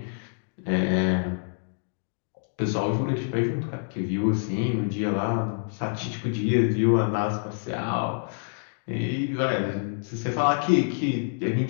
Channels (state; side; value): silent; right; digital silence